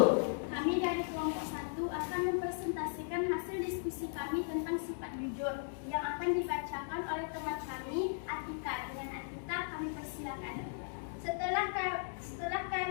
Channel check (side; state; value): right; silent; digital silence